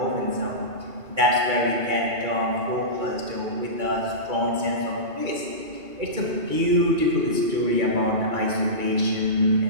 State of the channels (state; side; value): late; left; 2.3 ms